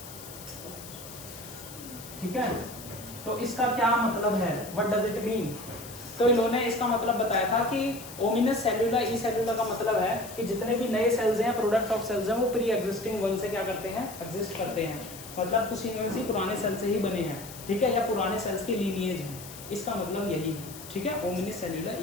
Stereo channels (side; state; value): left; noise; hiss, 14 dB below the sound